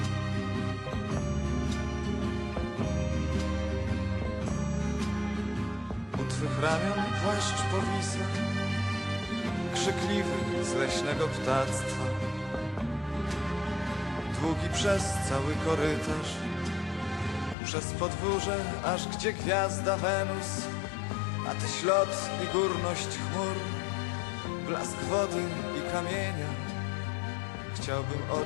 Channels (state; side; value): drops out; right; at 17.6 s